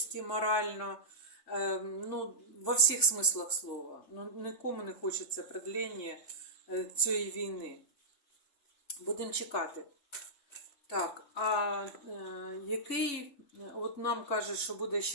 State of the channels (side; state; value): right; late; 3.5 ms